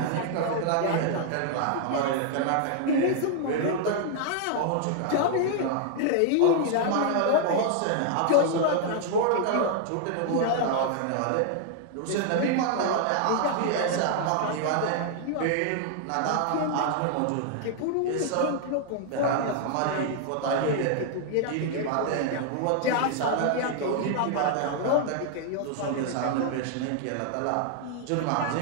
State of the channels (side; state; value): both; different; correlation 0.00